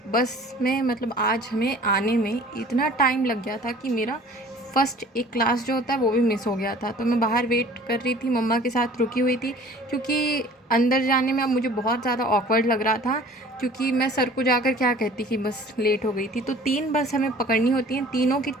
बस में मतलब आज हमें आने में इतना टाइम लग गया था कि मेरा फर्स्ट एक क्लास जो होता है वो भी मिस हो गया था। तो मैं बाहर वेट कर रही थी, मम्मा के साथ रुकी हुई थी, क्योंकि अंदर जाने में अब मुझे बहुत ज़्यादा ऑकवर्ड लग रहा था। क्योंकि मैं सर को जाकर क्या कहती कि बस लेट हो गई थी। तो 3 बस हमें पकड़नी होती हैं, तीनों की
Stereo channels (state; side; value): normal; both; correlation 0.48